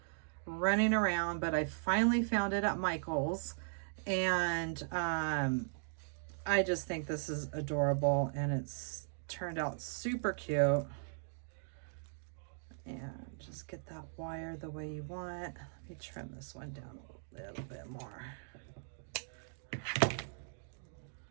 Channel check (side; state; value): left; silent; digital silence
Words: running around, but I finally found it at Michael's. And I just think this is adorable, and it's turned out super cute. And just get that wire the way you want. Let me trim this one down a little bit more.